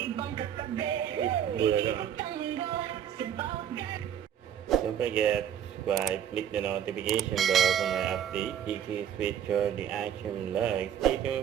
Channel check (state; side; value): quieter; left; 9.5 dB